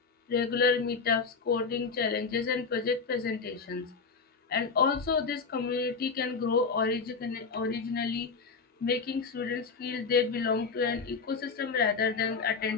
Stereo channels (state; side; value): quieter; right; 4.9 dB